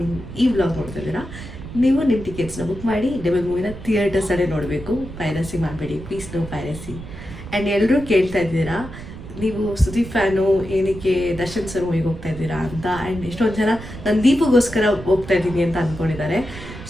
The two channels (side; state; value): right; noise; rumble, 12 dB below the sound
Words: ಈ ವ್ಲಾಗ್ ನೋಡ್ತಾ ಇದ್ದೀರಾ, ನೀವು ನಿಮ್ಮ ಟಿಕೆಟ್ಸ್ನ ಬುಕ್ ಮಾಡಿ ಡೆವಿಲ್ ಮೂವಿನ ಥಿಯೇಟರ್ಸಲ್ಲೇ ನೋಡಬೇಕು. ಪೈರಸಿ ಮಾಡಬೇಡಿ, ಪ್ಲೀಸ್ ನೋ ಪೈರಸಿ. ಆ್ಯಂಡ್ ಎಲ್ಲರೂ ಕೇಳ್ತಾ ಇದ್ದೀರಾ, ನೀವು ಸುದೀಪ್ ಫ್ಯಾನು, ಏನಕ್ಕೆ ದರ್ಶನ್ ಸರ್ ಮೂವಿಗೆ ಹೋಗ್ತಾ ಇದ್ದೀರಾ ಅಂತ. ಆ್ಯಂಡ್ ಎಷ್ಟೊಂದು ಜನ ನಾನು ದೀಪಗೋಸ್ಕರ ಹೋಗ್ತಾ ಇದ್ದೀನಿ ಅಂತ ಅಂದ್ಕೊಂಡಿದ್ದಾರೆ.